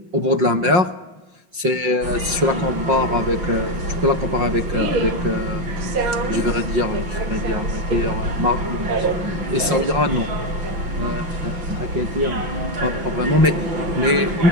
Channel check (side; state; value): left; late; 5.6 ms